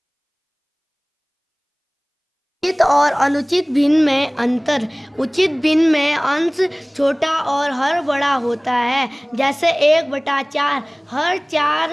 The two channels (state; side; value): identical; both; correlation 1.00